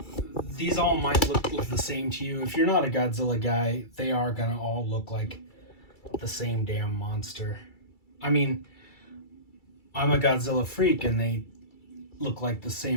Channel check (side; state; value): right; late; 2.3 ms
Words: these all might look the same to you. If you're not a Godzilla guy, they are gonna all look like the same damn monster. I mean, I'm a Godzilla freak, and look like the